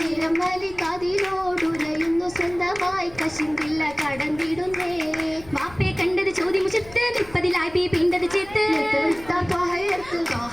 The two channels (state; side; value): noise; left; rumble, 20 dB below the sound